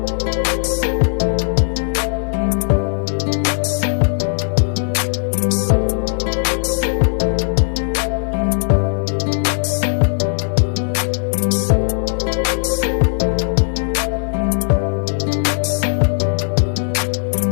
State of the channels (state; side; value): silent; right; 67 dB below the other